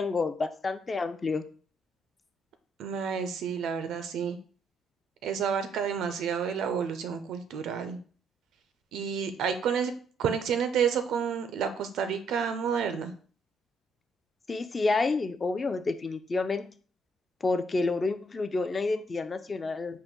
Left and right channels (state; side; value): normal; both; correlation 0.71